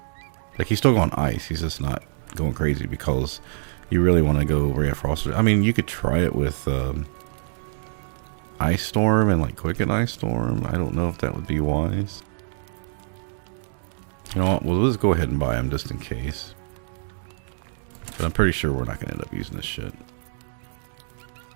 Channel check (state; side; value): silent; left; digital silence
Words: Like, he's still going ice, he's just not going crazy, because you really want to go Ray of Frost. I mean, you could try it with Ice Storm and like Quicken Ice Storm. I don't know if that would be wise. You know what, well, let's go ahead and buy him just in case. But I'm pretty sure we're not going to end up using this shit.